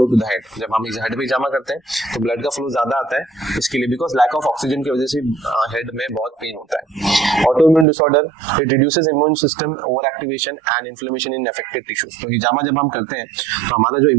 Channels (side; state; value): left; drops out; at 7.9 s